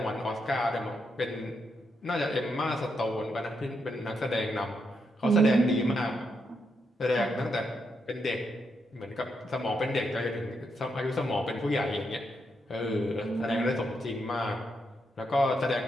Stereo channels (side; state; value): both; normal; correlation 0.81